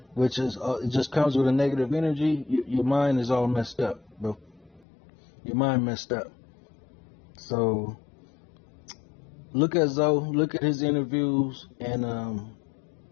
which is it just comes with a negative energy, your mind is all messed up, bro. Your mind messed up. So look at Zoe, look at his interviews, and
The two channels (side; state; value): right; drops out; at 4.8 s